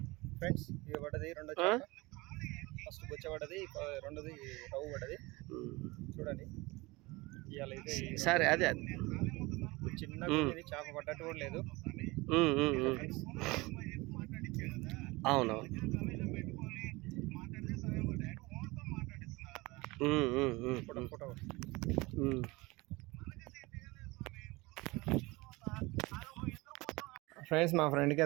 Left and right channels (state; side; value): quieter; left; 22.9 dB